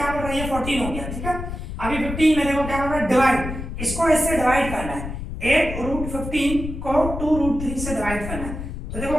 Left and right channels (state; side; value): noise; left; rumble, 7 dB below the sound